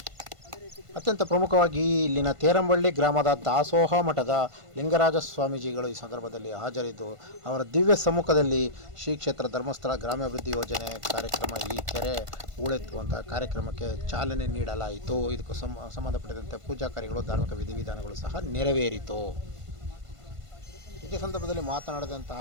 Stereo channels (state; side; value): late; left; 1.5 ms